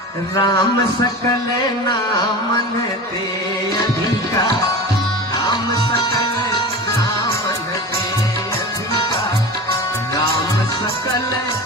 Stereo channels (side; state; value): both; normal; correlation 0.32